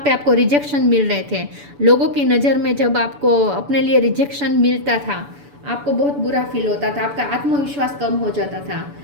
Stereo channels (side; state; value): left; late; 6.9 ms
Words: पे आपको रिजेक्शन मिल रहे थे, लोगों की नज़र में जब आपको अपने लिए रिजेक्शन मिलता था, आपको बहुत बुरा फील होता था, आपका आत्मविश्वास कम हो जाता था,